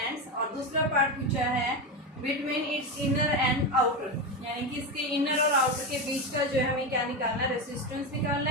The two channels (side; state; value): both; normal; correlation 0.16